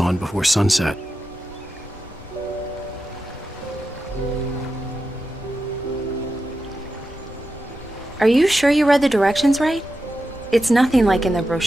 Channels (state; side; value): normal; both; correlation 0.90